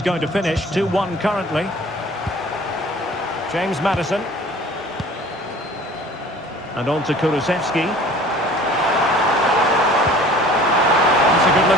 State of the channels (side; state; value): both; normal; correlation 0.47